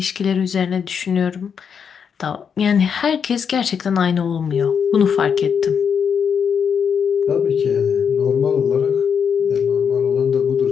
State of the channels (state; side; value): quieter; right; 7.0 dB